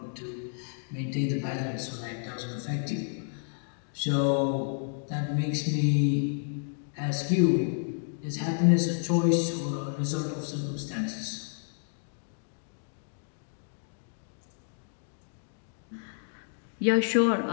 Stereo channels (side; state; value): right; silent; digital silence